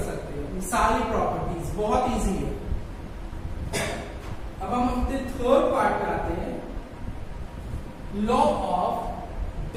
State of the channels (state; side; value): identical; both; correlation 1.00